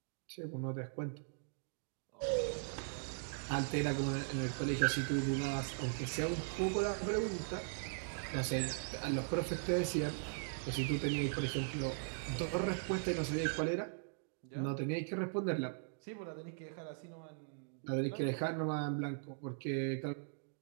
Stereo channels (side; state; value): left; silent; digital silence